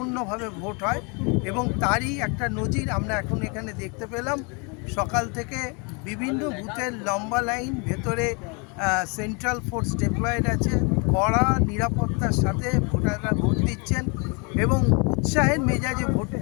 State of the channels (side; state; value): right; quieter; 32.8 dB